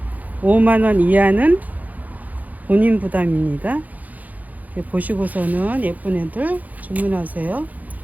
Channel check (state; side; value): late; left; 0.079 ms